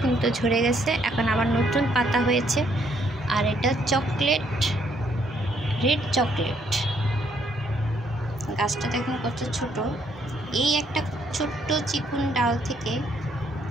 কিন্তু ঝরে গেছে। এখন আবার নতুন পাতা হয়েছে। আর এটা রেড চকলেট। গাছটা দেখুন কত ছোট। এই একটা ছোট্ট চিকুন ডাল থেকে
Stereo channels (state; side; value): normal; both; correlation 0.69